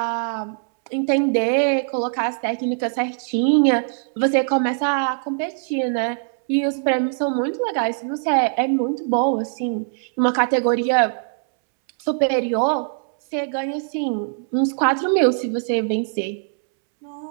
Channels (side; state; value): left; silent; 64 dB below the other